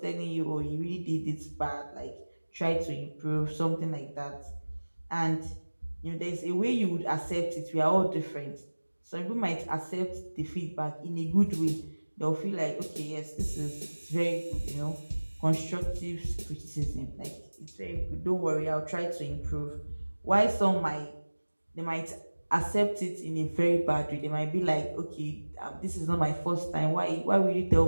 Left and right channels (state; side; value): inverted; both; correlation -1.00